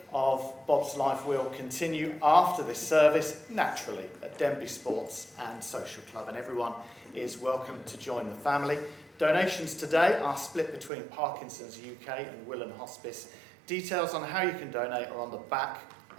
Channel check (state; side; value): drops out; left; at 10.9 s